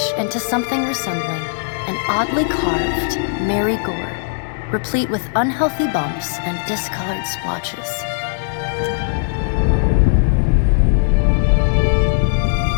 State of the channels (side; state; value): right; silent; digital silence